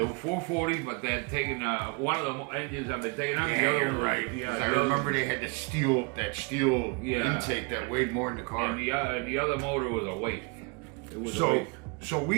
were 440, but they had taken one of the engines had been taken out. Yeah, the other you're one, right. Yeah, I remember they had that steel Yeah. intake that weighed more than the car. And the other motor was a waste. It was a So waste. so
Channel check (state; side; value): quieter; left; 31.5 dB